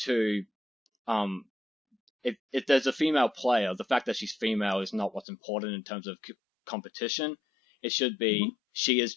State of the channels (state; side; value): drops out; right; at 5.2 s